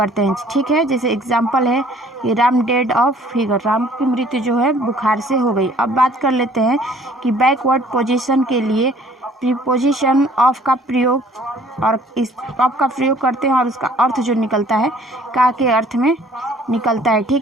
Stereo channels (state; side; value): normal; both; correlation 0.56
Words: हैं, ठीक है। जैसे एग्जाम्पल है कि Ram dead of fever, Ram की मृत्यु जो है बुखार से हो गई। अब बात कर लेते हैं कि बैकवर्ड पोजीशन के लिए प्रीपोजिशन ऑफ का प्रयोग, और इस ऑफ का प्रयोग करते हैं और उसका अर्थ जो निकलता है का के अर्थ में निकलता है,